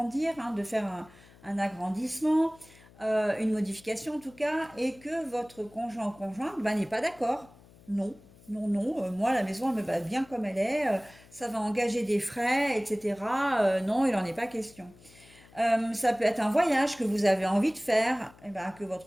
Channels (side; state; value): left; noise; hum, 24 dB below the sound